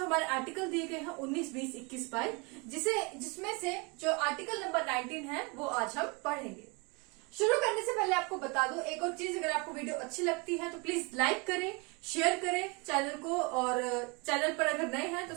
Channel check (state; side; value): quieter; left; 29.9 dB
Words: आर्टिकल दिए गए हैं 19, 20, 21, 22, जिसमें से जो आर्टिकल नंबर 19 है वो आज हम पढ़ेंगे। शुरू करने से पहले आपको बता दूं एक और चीज, अगर आपको वीडियो अच्छी लगती है तो प्लीज लाइक करें, शेयर करें चैनल को, और चैनल पर अगर नए हैं तो